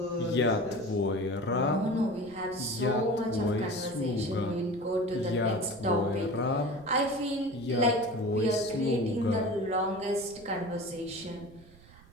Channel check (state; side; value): noise; right; rumble, 24 dB below the sound